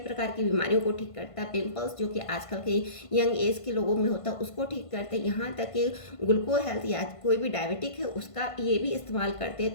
की बीमारियों को ठीक करता है। पिंपल्स जो कि आजकल के यंग एज के लोगों में होता है उसको ठीक करते हैं। यहाँ तक कि ग्लूको हेल्थ या कोई भी डायबिटिक है उसका ये भी इस्तेमाल करते हैं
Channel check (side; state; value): right; late; 1.5 ms